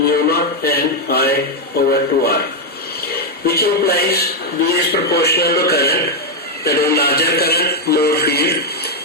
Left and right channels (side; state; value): both; normal; correlation 0.02